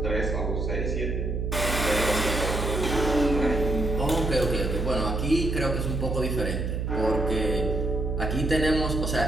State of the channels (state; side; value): noise; right; hum, 1 dB below the sound